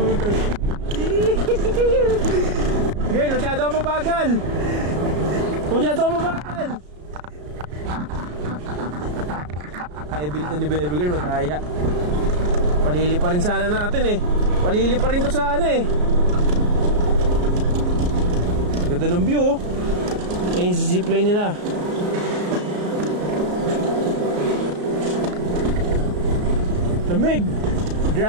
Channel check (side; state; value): left; late; 34 ms